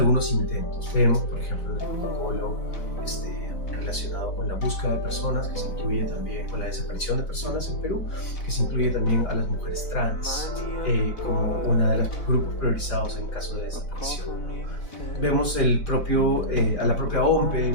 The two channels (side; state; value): right; late; 4.0 ms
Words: intentos. Vemos, por ejemplo, el protocolo relacionado con la búsqueda de personas, que se incluye también con la desaparición de personas en Perú, que se incluye también a las mujeres trans como uno de los grupos priorizados en caso de desaparición. Vemos a la propia OMPE